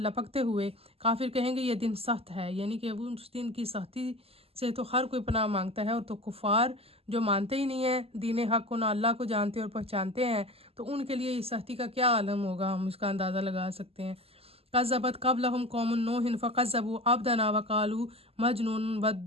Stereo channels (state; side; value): late; left; 0.29 ms